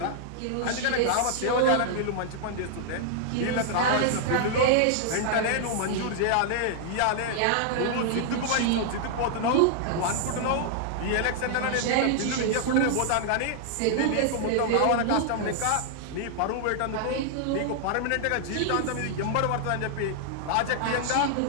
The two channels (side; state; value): both; different; correlation -0.01